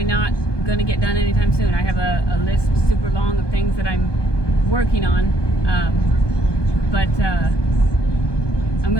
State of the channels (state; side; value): late; right; 1.2 ms